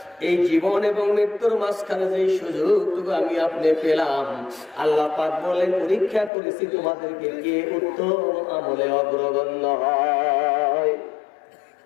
এই জীবন এবং মৃত্যুর মাঝখানে যে সুযোগটুকু আমি আপনি পেলাম, আল্লাহ পাক বলেন পরীক্ষা করেছি তোমাদেরকে কে উত্তম আমলে অগ্রগণ্য হয়,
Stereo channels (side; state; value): right; drops out; at 6.3 s